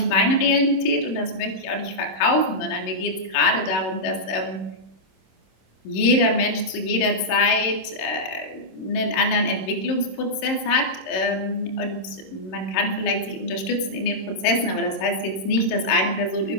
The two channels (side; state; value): right; late; 26 ms